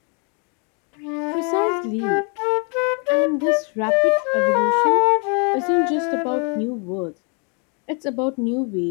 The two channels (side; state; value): right; quieter; 36.1 dB